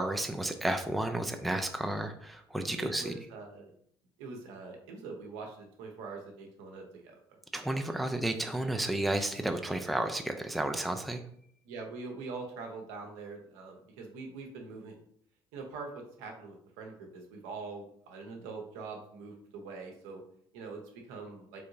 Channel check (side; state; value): both; normal; correlation 0.82